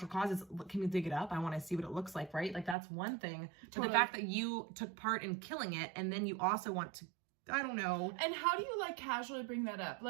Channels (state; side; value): drops out; left; at 2.8 s